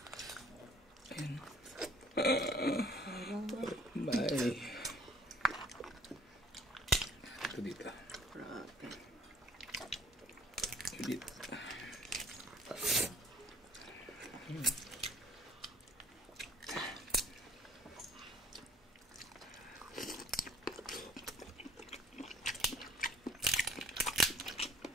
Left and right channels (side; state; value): both; normal; correlation 0.56